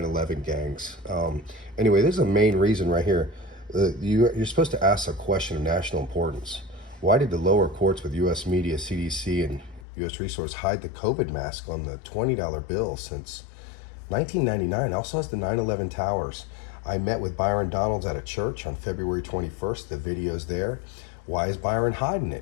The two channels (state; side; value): drops out; right; at 9.9 s